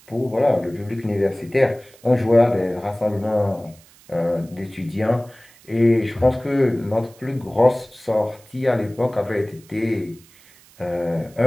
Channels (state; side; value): noise; right; hiss, 26 dB below the sound